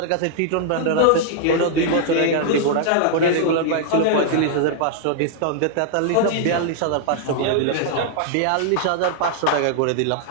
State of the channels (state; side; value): different; both; correlation -0.01